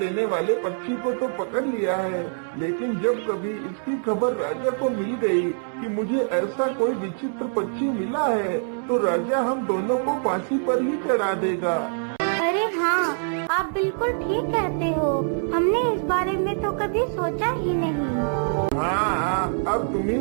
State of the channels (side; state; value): left; silent; 62 dB below the other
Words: वाले पक्षी को तो पकड़ लिया है, लेकिन जब कभी इसकी खबर राजा को मिल गई कि मुझे ऐसा कोई विचित्र पक्षी मिला है, तो राजा हम दोनों को फांसी पर ही चढ़ा देगा। अरे हाँ, आप बिल्कुल ठीक कहते हो। हमने इस बारे में तो कभी सोचा ही नहीं। हाँ, अब तुम